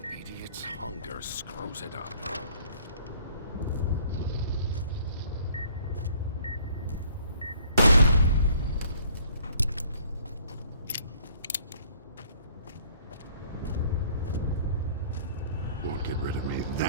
idiot's hunger screws it up. Won't get rid of me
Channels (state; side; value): inverted; both; correlation -0.58